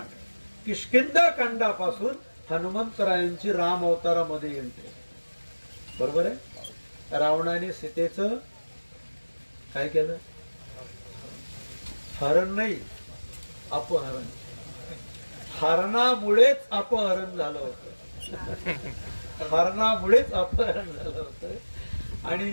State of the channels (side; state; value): both; inverted; correlation -1.00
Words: किष्किंधा कांडापासून हनुमंतरायांची राम अवतारामध्ये एंट्री. बरोबर आहे. रावणाने सीतेचं काय केलं? हरण नाही, अपहरण. हरणामुळेच अपहरण झालं होतं. हरणामुळेच अपहरण झालं होतं.